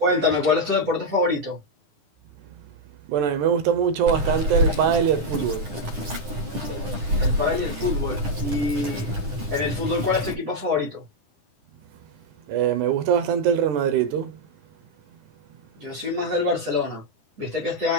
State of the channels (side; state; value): left; late; 10 ms